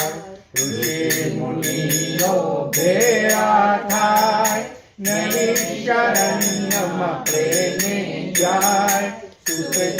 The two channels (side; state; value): both; identical; correlation 1.00